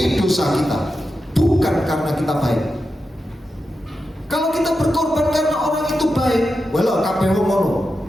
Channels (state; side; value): normal; both; correlation 0.89